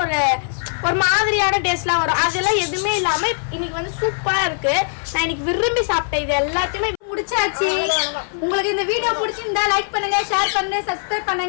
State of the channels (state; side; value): silent; right; 65 dB below the other